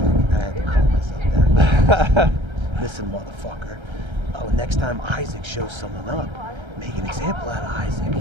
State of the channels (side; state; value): left; late; 1.3 ms